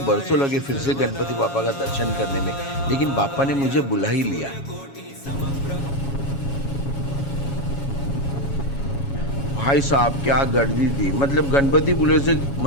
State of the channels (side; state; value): right; late; 7.2 ms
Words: लगे फिर से गणपति बापा का दर्शन करने में, लेकिन बापा ने मुझे बुला ही लिया। भाई साहब क्या गर्दी थी। मतलब गणपतिपुले से